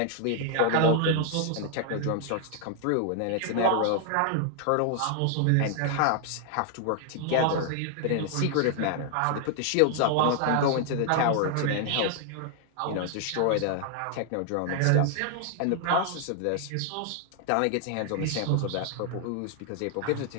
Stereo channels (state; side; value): different; both; correlation 0.00